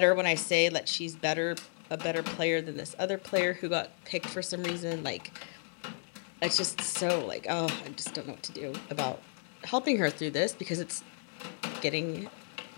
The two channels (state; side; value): silent; right; 56 dB below the other